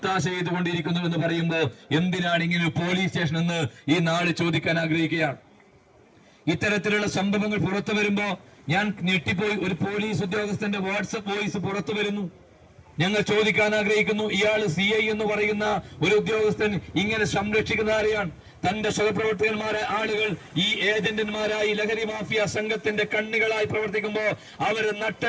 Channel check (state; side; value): identical; both; correlation 1.00